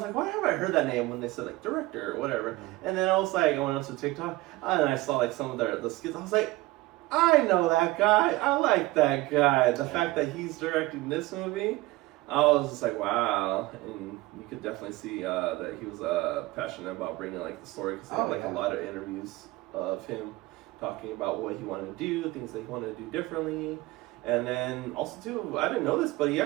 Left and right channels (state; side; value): quieter; left; 19.9 dB